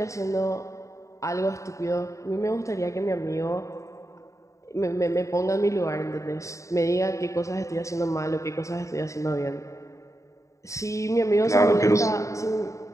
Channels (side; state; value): right; late; 0.15 ms